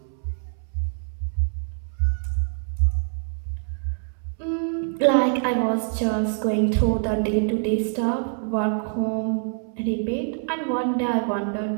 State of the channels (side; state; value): left; silent; 62 dB below the other